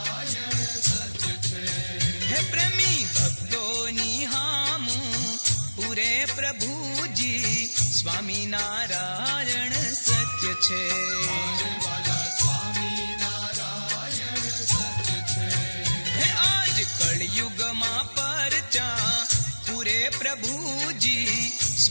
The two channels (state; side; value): inverted; both; correlation -1.00